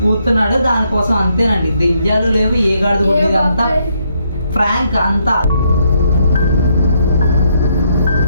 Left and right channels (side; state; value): both; inverted; correlation -0.75